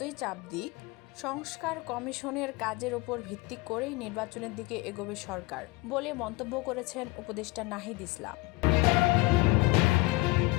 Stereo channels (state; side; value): quieter; right; 22.4 dB